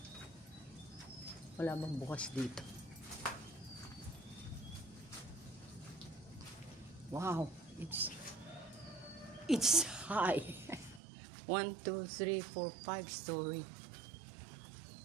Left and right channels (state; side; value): drops out; left; at 11.0 s